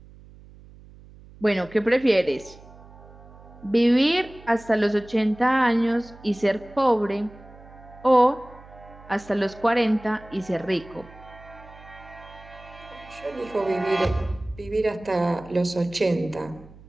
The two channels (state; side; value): noise; right; hum, 21 dB below the sound